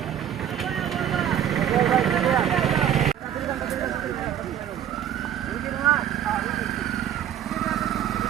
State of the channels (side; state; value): left; quieter; 10.1 dB